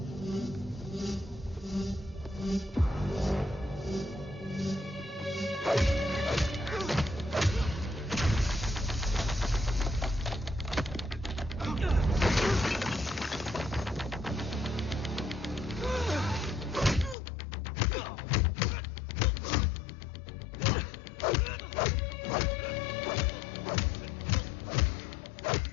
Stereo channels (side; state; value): right; drops out; at 17.2 s